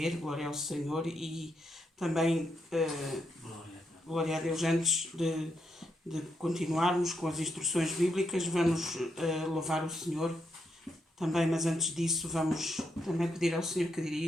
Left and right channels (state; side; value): normal; both; correlation 0.81